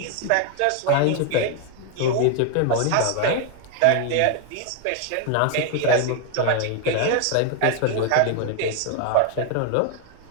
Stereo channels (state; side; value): different; both; correlation 0.01